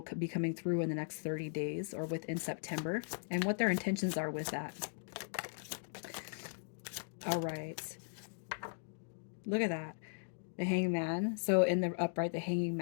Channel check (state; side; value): silent; right; digital silence